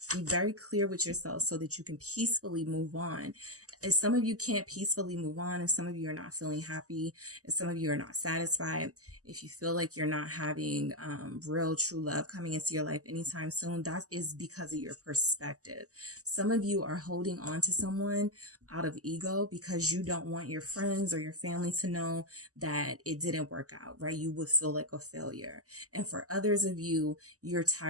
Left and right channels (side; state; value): left; late; 0.66 ms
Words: Be very clear with yourself so that you can peacefully move on. If some of you can't peacefully move on, if some of you are not feeling happy, if some of you are not satisfied, if you feel like you're not having real true love coming into your life anytime soon, that is because of your perspective. Some of you are holding on to someone out of ego because you don't want your friends or your family to know that it didn't work out, right? You would feel like a failure. And for others of you, you're